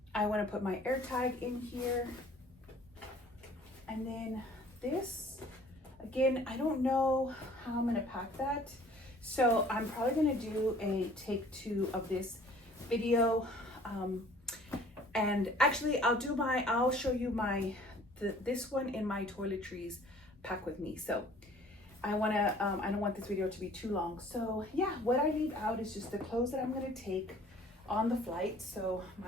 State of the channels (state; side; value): normal; both; correlation 0.52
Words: I want to put my air tag in here. And then this, again, I don't know how I'm going to pack that. So I'm probably gonna do a take 2 of this video. And actually I'll show you this one in my toiletries pack with me. So I don't want this video to be too long. So yeah, what I leave out is just the clothes that I'm gonna take on the flight. So